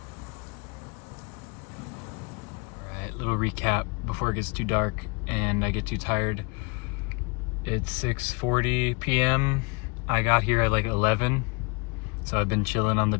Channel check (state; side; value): quieter; right; 30.4 dB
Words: Alright, little recap before it gets too dark and I get too tired. It's 6:40 p.m. I got here at like 11, so I've been chilling on the